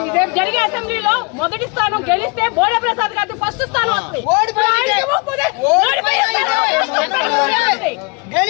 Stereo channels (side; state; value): right; quieter; 29.9 dB